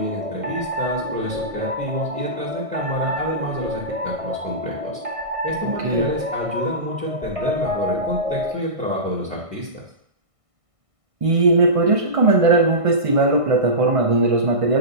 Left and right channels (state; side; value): late; left; 1.6 ms